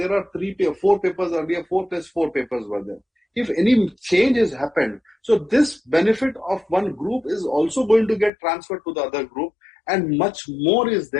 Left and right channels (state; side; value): drops out; right; at 8.3 s